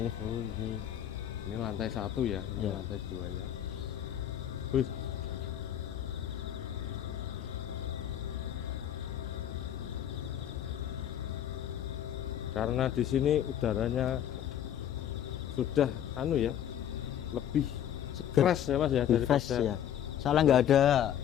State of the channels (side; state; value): right; quieter; 10.3 dB